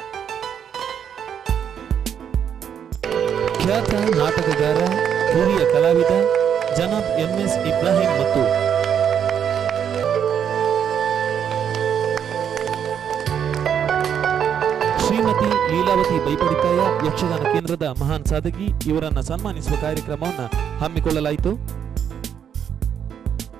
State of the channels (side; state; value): left; quieter; 8.4 dB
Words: ಖ್ಯಾತ ನಾಟಕಗಾರ ಹಿರಿಯ ಕಲಾವಿದ ಜನಾಬ್ MS ಇಬ್ರಾಹಿಂ ಮತ್ತು ಶ್ರೀಮತಿ ಲೀಲಾವತಿ ಬೈಪಡಿತಾಯ ಯಕ್ಷಗಾನ ಕೇಂದ್ರದ ಮಹಾನ್ ಸಾಧಕಿ ಇವರನ್ನ ಸನ್ಮಾನಿಸುವ ಕಾರ್ಯಕ್ರಮವನ್ನು ಹಮ್ಮಿಕೊಳ್ಳಲಾಯಿತು.